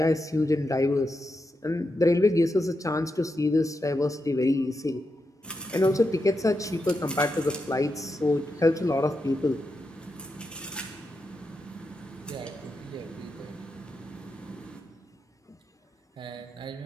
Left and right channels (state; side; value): normal; both; correlation 0.86